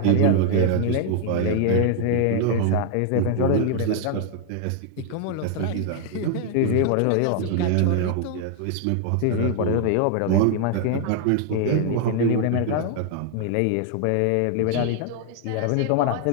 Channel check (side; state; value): both; different; correlation 0.00